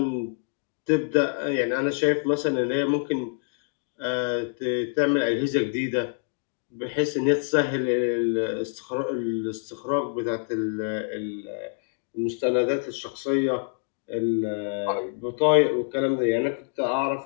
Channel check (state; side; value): silent; right; digital silence